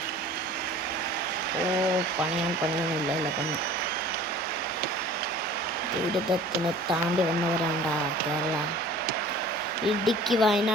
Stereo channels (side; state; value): both; normal; correlation 0.46